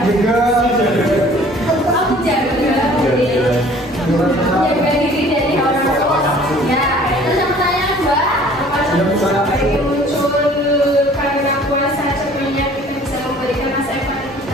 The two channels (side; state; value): both; normal; correlation 0.52